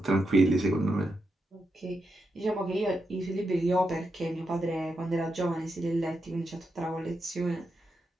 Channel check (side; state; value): both; normal; correlation 0.85